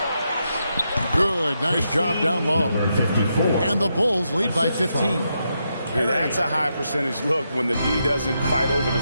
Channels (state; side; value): inverted; both; correlation -0.83